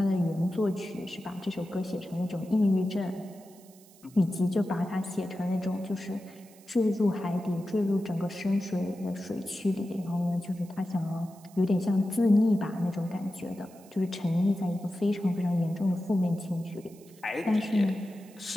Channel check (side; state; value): right; noise; hiss, 25 dB below the sound